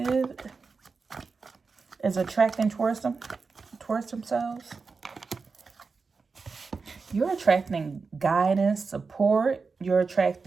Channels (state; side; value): quieter; left; 4.6 dB